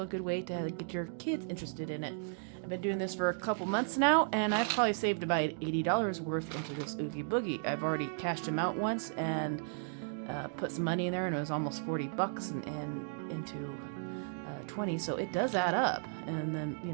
good way to get your kids interested in it. I've been doing this for a couple months now, and I've probably saved about $80 worth into this Oogie Boogie. I've already cashed them out once and put some money in there, and it was almost 40 bucks and into 20, so it does add up. And then,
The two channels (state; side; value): silent; left; digital silence